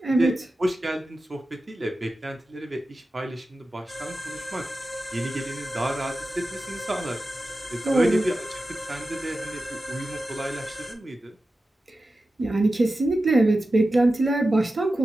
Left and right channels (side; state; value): both; normal; correlation 0.93